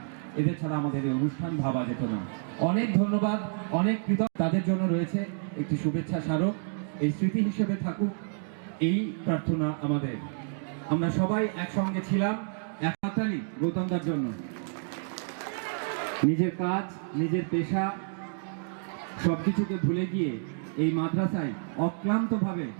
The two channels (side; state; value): left; silent; digital silence